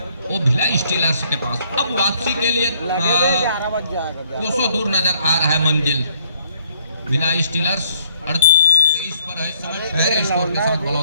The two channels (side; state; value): both; inverted; correlation -0.67